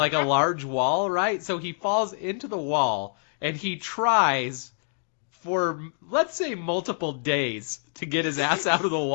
a large wall, right? So he falls into the wall and he tries for, let's say, multiple days to get his ass out of the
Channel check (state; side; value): silent; right; digital silence